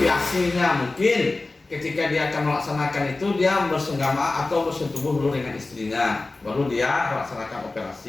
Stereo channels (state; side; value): quieter; right; 3.3 dB